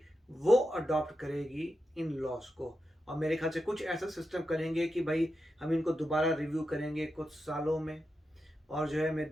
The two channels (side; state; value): both; normal; correlation 0.88